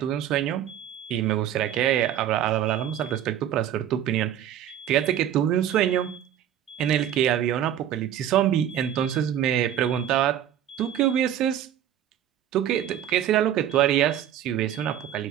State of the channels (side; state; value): left; quieter; 10.7 dB